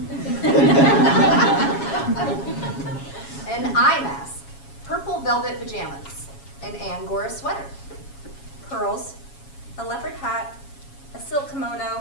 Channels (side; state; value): right; late; 7.3 ms